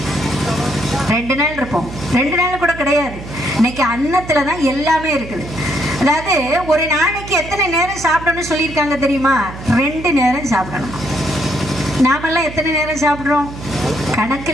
2 நாள் இருப்போம், 2 நாள் கூட கிடையாது. இன்னைக்கு அன்னத்துலதான் எல்லாமே இருக்குது. அதாவது ஒரு நாளைக்கு எத்தனை நேரம் சாப்பிடணும்னு சொல்லியிருக்காங்க தெரியுமா? 2 நேரம் சாப்பிடணும். நாமெல்லாம் எத்தனை நேரம் சாப்பிட்றோம்? கணக்கு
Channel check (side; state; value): right; noise; hum, 12 dB below the sound